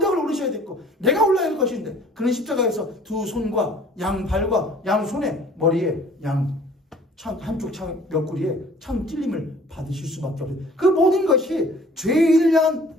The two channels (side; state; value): both; normal; correlation 0.52